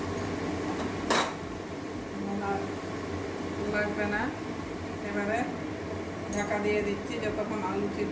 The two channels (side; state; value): both; identical; correlation 1.00